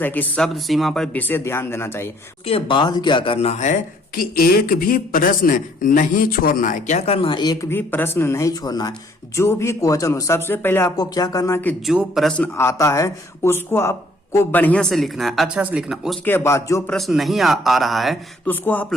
कि शब्द सीमा पर विशेष ध्यान देना चाहिए। उसके बाद क्या करना है कि एक भी प्रश्न नहीं छोड़ना है। क्या करना है, एक भी प्रश्न नहीं छोड़ना है। जो भी क्वेश्चन हो, सबसे पहले आपको क्या करना है कि जो प्रश्न आता है उसको आप को बढ़िया से लिखना है, अच्छा से लिखना। उसके बाद जो प्रश्न नहीं आ रहा है तो उसको आप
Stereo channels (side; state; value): both; normal; correlation 0.62